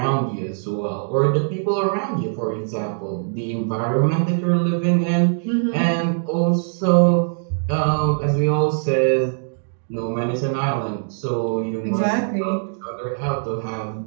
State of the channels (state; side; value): silent; left; digital silence